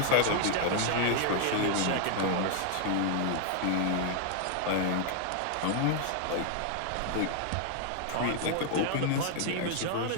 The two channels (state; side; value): different; both; correlation 0.00